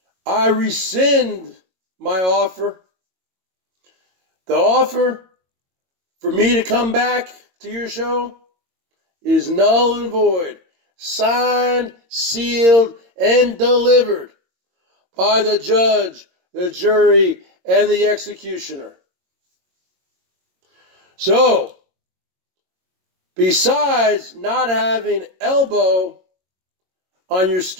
I rescind my offer. The offer for me to come back to your show is null and void. Signed, sealed, and delivered by the judge, the jury, and the executioner. So, besides not having elbow on your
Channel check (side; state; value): left; late; 22 ms